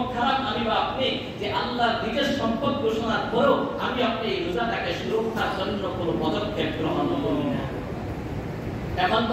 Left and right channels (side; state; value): both; identical; correlation 1.00